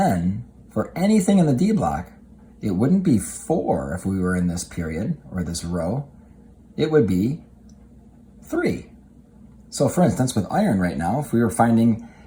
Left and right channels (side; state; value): both; identical; correlation 1.00